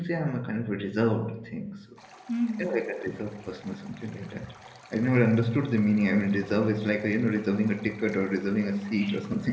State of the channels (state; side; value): identical; both; correlation 1.00